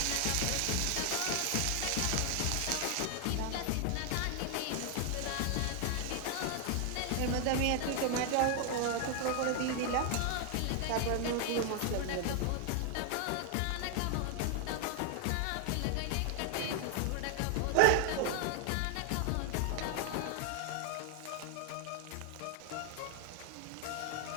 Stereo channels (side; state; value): both; different; correlation 0.00